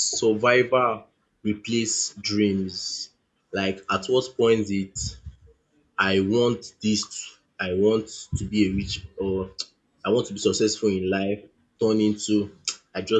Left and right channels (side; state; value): both; identical; correlation 1.00